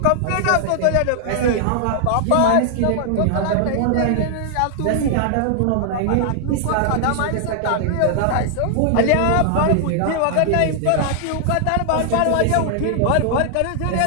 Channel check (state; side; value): different; both; correlation -0.01